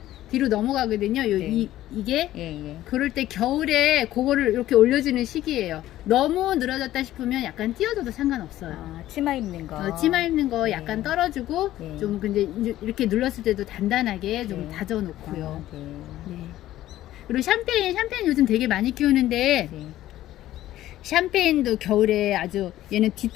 뒤로 넘어가거든요. 네. 이게 예. 그럴 때 겨울에 그거를 이렇게 올려주는 시기예요. 너무 늘어졌다 싶으면 약간 띄워줘도 상관없어요. 아, 치마 입는 거. 치마 입는 거 네. 약간 떨어주고 네. 좀 근데 이렇게 눌렀을 때도 단단하게 좀 네. 다져놓고요. 아, 네. 네. 그리고 샴페인 요즘 되게 많이 키우는데 네. 샴페인도 겨울에 아주 얘는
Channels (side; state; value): right; quieter; 14.2 dB